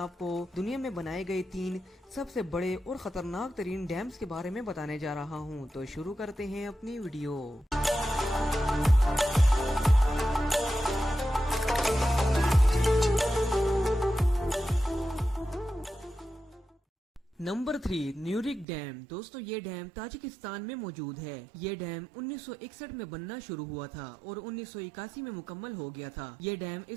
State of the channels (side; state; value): left; drops out; at 18.7 s